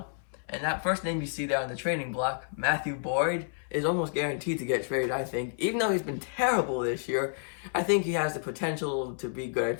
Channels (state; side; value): silent; right; 58 dB below the other